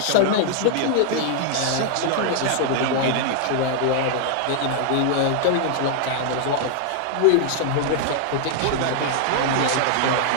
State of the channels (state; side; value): different; both; correlation 0.00